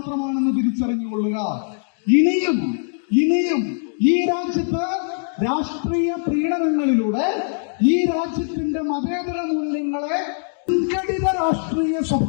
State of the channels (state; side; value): silent; right; digital silence